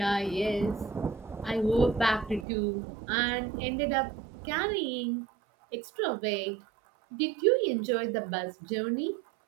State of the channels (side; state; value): left; drops out; at 2.5 s